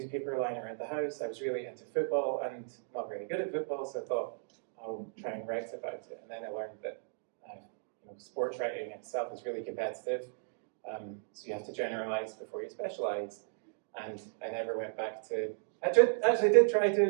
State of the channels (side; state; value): left; silent; digital silence